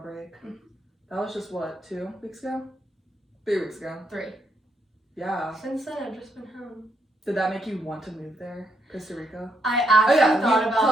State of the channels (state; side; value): normal; both; correlation 0.77